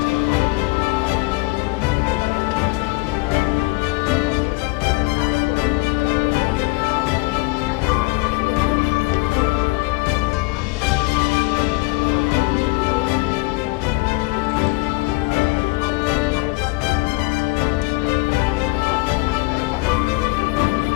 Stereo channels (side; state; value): right; quieter; 24.2 dB